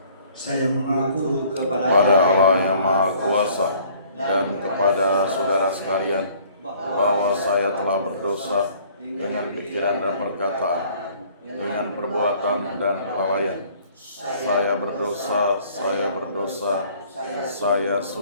Saya mengaku kepada Allah yang Maha Kuasa dan kepada saudara sekalian bahwa saya telah berdosa dengan pikiran dan perkataan, dengan perbuatan dan kelalaian. Saya berdosa, saya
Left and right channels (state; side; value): inverted; both; correlation -0.57